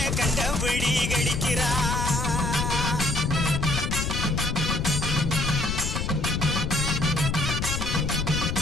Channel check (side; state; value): left; noise; rumble, 1 dB below the sound